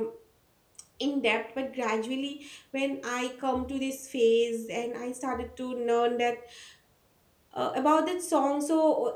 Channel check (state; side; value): identical; both; correlation 1.00